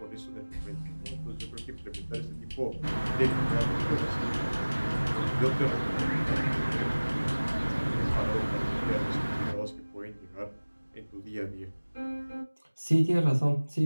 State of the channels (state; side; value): inverted; both; correlation -1.00